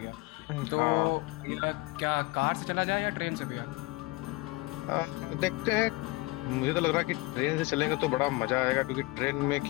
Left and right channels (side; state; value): right; quieter; 23.1 dB